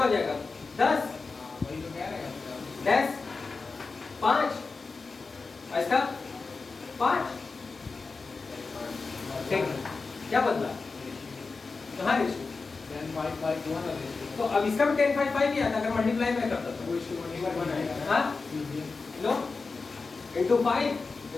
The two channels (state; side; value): quieter; right; 4.2 dB